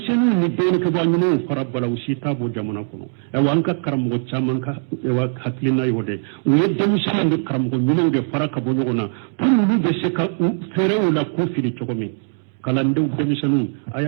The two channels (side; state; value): left; silent; 65 dB below the other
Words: ni dɔɔninkɛbaa ɲumanw fara bala u si t'a bɔ jamana kɔnɔ ɛwa an ka karamɔgɔ caman ka hakilina y'o de u ye denmisɛnninw ni karamɔgɔ ɲumanw de fara ka bɔ ɲɔgɔn na pour olu bɛ se ka fɛɛrɛw la k'u fili cogo min kalandenw denmisɛnninw a